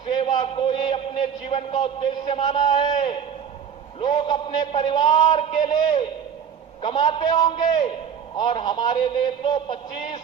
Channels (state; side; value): quieter; left; 7.7 dB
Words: को ही अपने जीवन का उद्देश्य माना है। लोग अपने परिवार के लिए कमाते होंगे और हमारे लिए तो